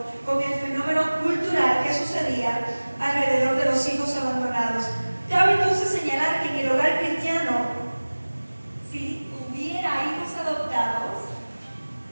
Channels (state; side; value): inverted; both; correlation -1.00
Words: con el fenómeno cultural que sucedía alrededor de los hijos abandonados. Cabe entonces señalar que en el hogar cristiano, si hubiera hijos adoptados,